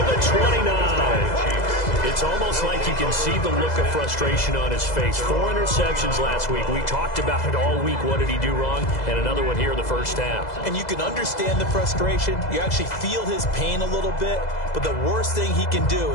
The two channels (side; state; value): right; late; 2.0 ms